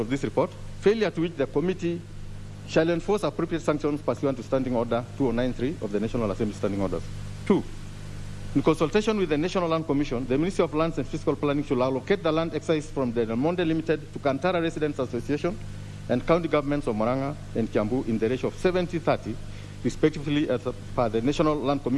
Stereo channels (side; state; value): both; identical; correlation 1.00